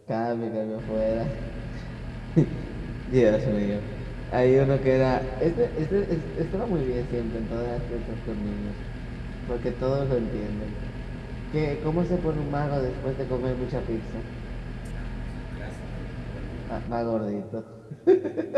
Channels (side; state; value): both; identical; correlation 1.00